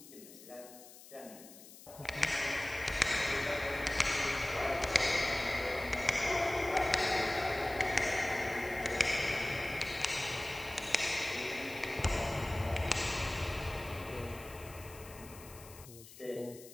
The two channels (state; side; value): noise; left; hiss, 18 dB below the sound